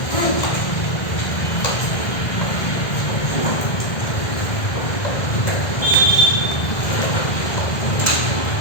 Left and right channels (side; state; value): right; late; 1.6 ms